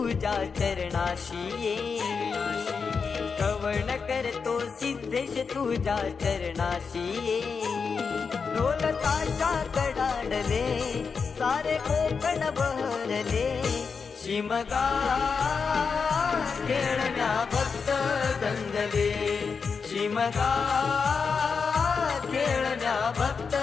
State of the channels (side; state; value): right; quieter; 5.5 dB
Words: चरणाशी ये, कवण करतो सिद्धेश तुझ्या चरणाशी ये. ढोल ताशा कडाडले सारे कोकण बहरले, शिमगा खेळण्या भक्त दंगले. शिमगा खेळण्या भक्त